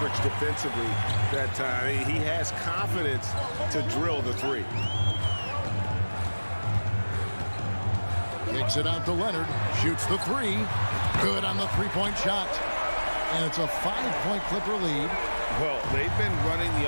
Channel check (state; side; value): inverted; both; correlation -1.00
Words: defensively that time, he has confidence to drill the three. Kicks it out to Leonard. Shoots the 3. Good on the three-point shot. And it's a 5-point Clipper lead. Well, they've been running the